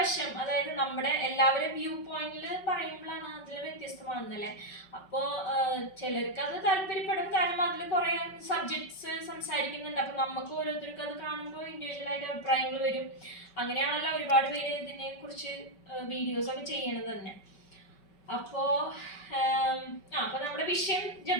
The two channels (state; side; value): late; right; 5.3 ms